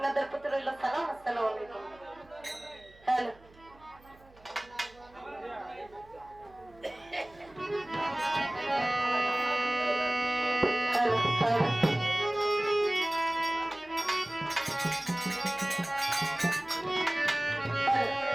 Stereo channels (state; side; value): noise; right; hum, 26 dB below the sound